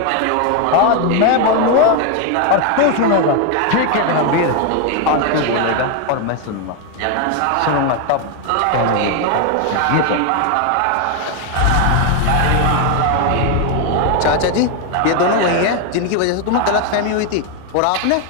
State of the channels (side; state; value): both; different; correlation 0.01